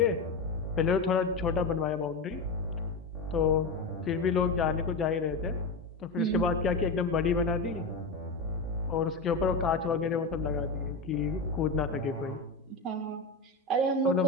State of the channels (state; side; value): quieter; right; 3.6 dB